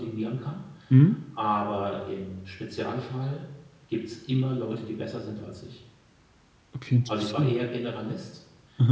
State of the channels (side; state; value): both; identical; correlation 1.00